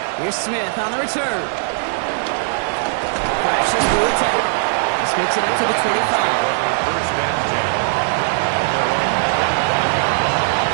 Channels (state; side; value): silent; left; digital silence